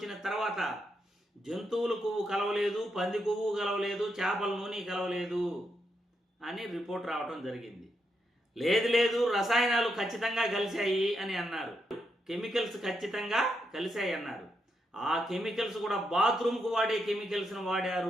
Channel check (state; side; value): normal; both; correlation 0.82